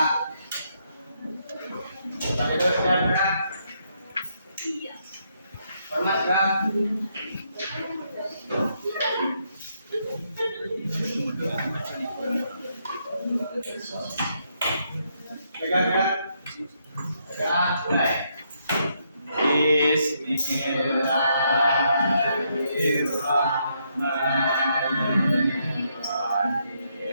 Pak Edo sudah Kak. Iya. Hormat Kak. Pegang Kak. Pegang mulai.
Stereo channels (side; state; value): both; inverted; correlation -0.76